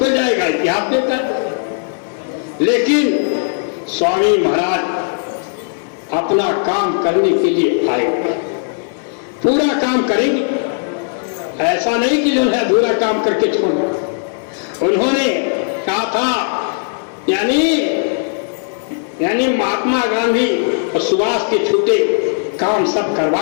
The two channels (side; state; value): right; silent; 67 dB below the other